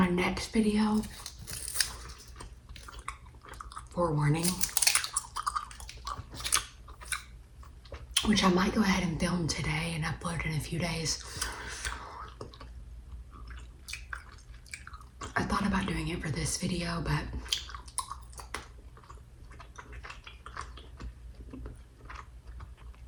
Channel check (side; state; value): both; identical; correlation 1.00